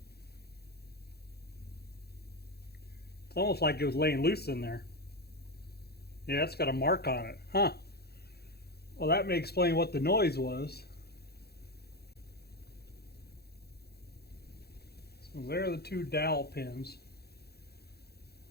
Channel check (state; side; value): late; right; 0.46 ms